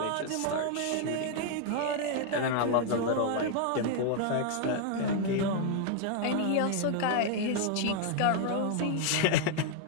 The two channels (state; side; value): different; both; correlation 0.00